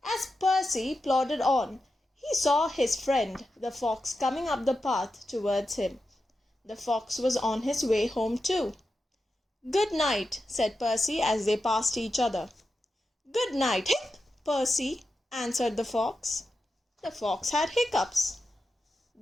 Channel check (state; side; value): normal; both; correlation 0.90